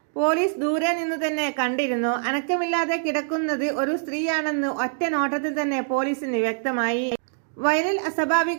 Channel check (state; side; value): silent; left; digital silence